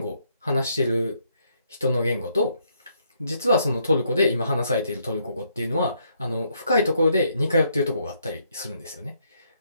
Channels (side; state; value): both; inverted; correlation -0.73